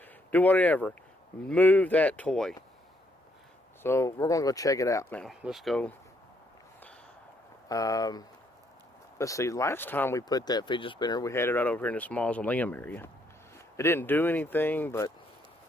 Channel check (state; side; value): normal; both; correlation 0.72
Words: Do whatever. Move that toy. So we're going to go check it out now. Let's go. Let's see. Last time we put that fidget spinner, we had it right over here in this mausoleum area. It didn't do anything, but